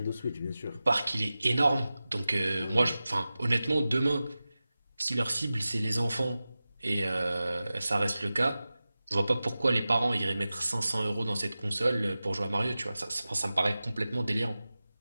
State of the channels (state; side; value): inverted; both; correlation -0.96